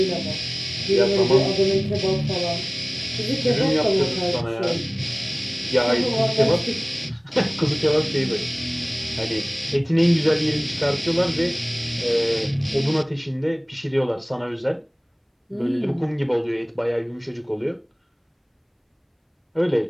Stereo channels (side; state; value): both; identical; correlation 1.00